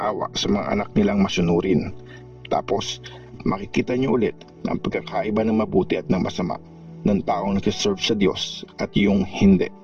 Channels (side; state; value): both; identical; correlation 1.00